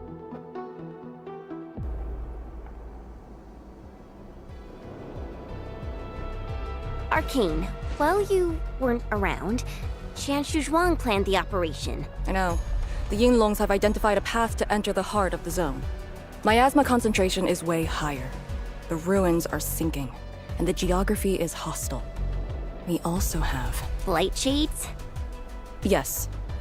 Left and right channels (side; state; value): both; identical; correlation 1.00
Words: Arcane, while you weren't around, Qian Shuzhuang planned the operation. I know. The Yinglongs have identified a path to enter the heart of the zone. Miasma concentration is way higher. The ruins are sinking, and the geography is hostile. We also have... Light shades? Yes.